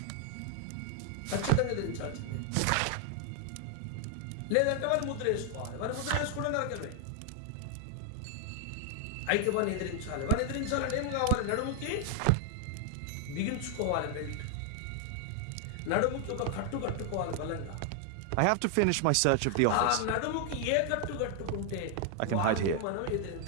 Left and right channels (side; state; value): both; different; correlation 0.00